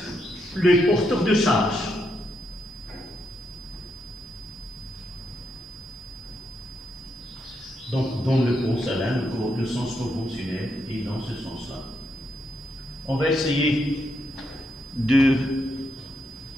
les porteurs de charge. Donc dans le porcelain, le sens conventionnel est dans ce sens-là. On va essayer de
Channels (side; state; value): both; normal; correlation 0.80